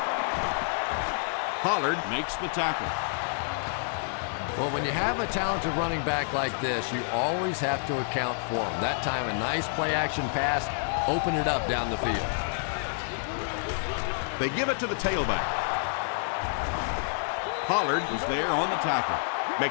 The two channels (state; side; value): silent; right; digital silence